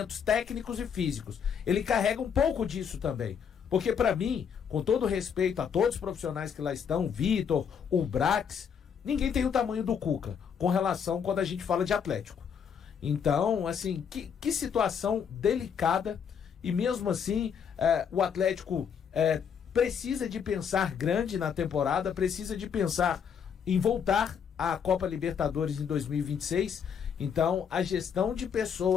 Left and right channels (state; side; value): quieter; right; 7.3 dB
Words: técnicos e físicos. Ele carrega um pouco disso também. Porque para mim, com todo respeito a todos os profissionais que lá estão, Vitor, o Brax, ninguém tem o tamanho do Cuca com relação quando a gente fala de Atlético. Então, assim, que situação delicada, e mesmo assim o Atlético precisa de pensar grande na temporada, precisa de pensar em voltar à Copa Libertadores em 2026. Então, a gestão de